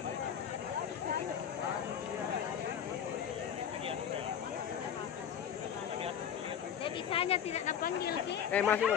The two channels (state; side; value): quieter; right; 8.7 dB